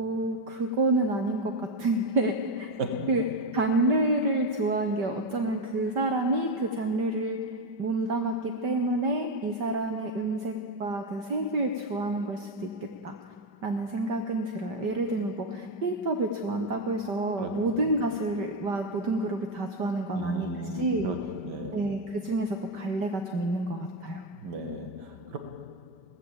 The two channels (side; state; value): left; late; 5.1 ms